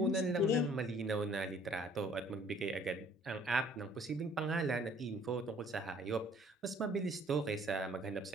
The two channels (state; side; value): normal; both; correlation 0.57